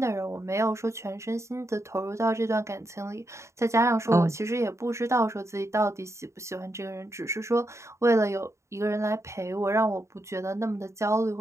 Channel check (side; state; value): left; late; 0.14 ms